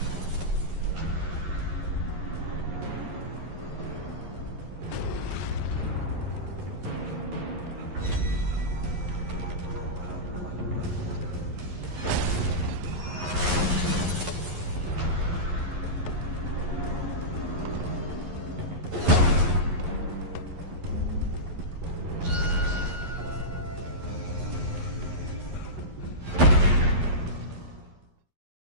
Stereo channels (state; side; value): late; left; 11 ms